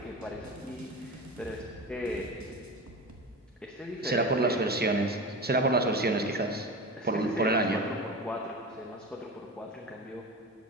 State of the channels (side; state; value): both; normal; correlation 0.28